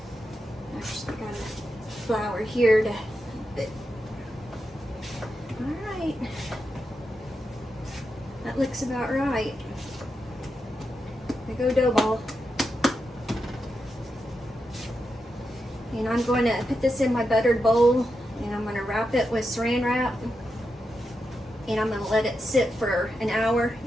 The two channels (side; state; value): both; normal; correlation 0.87